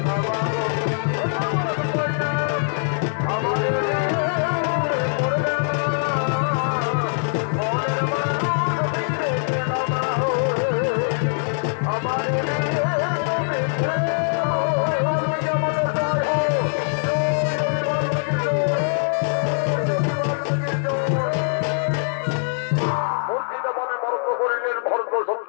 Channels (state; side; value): silent; right; digital silence